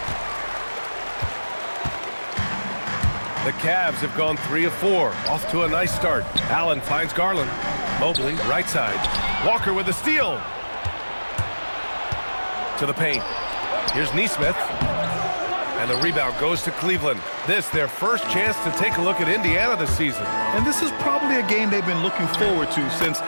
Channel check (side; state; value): both; inverted; correlation -1.00